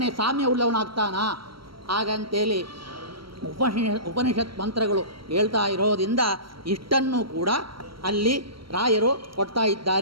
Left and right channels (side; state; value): left; late; 0.74 ms